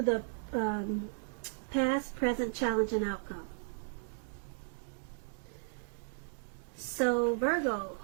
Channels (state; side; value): silent; left; 54 dB below the other